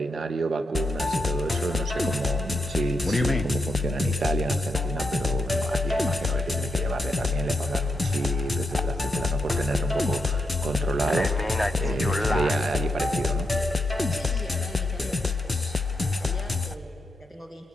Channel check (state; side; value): normal; both; correlation 0.84